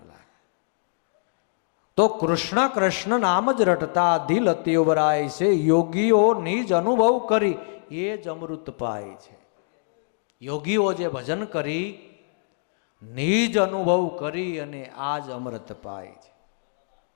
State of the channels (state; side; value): silent; right; digital silence